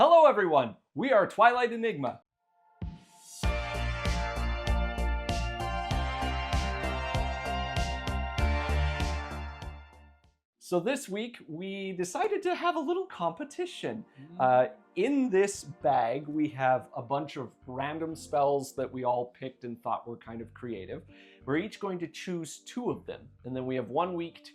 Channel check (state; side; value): identical; both; correlation 1.00